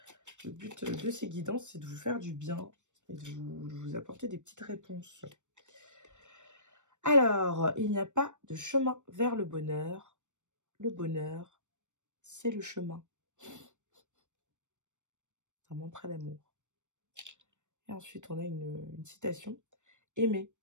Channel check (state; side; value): late; left; 0.85 ms